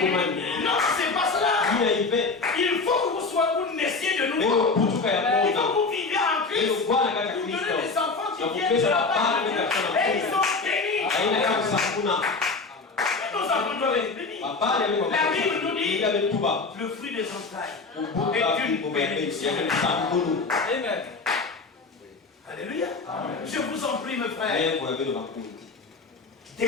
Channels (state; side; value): quieter; right; 4.1 dB